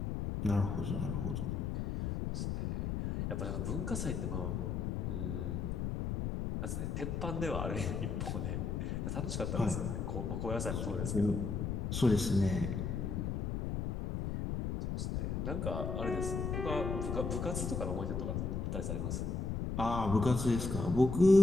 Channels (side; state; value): left; noise; rumble, 1 dB below the sound